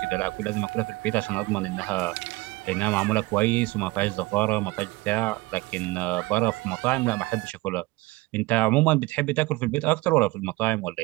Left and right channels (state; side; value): quieter; left; 21.8 dB